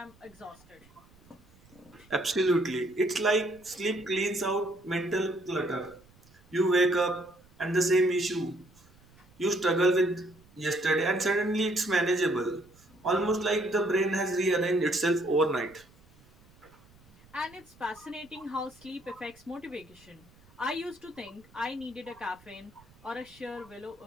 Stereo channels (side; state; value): right; noise; rumble, 28 dB below the sound